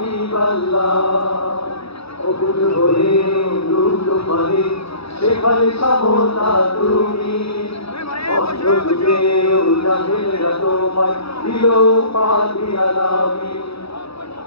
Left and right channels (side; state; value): right; late; 0.77 ms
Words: الله অকুল হয়ে দুঃখ পরে সেখানে সমতা তুমি অন্তরে উজাহেরা তোমায় দিল পানি আলামি